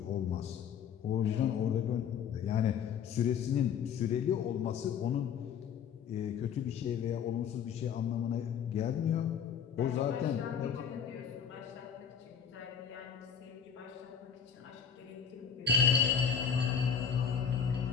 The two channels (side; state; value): right; quieter; 7.5 dB